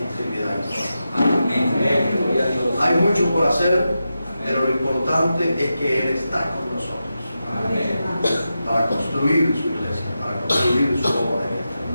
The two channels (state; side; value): inverted; both; correlation -0.90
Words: Trinidad. Amén. Hay mucho por hacer, pero lo importante es que Él está con nosotros. Amén. Para construir su iglesia, para construir su obra en esta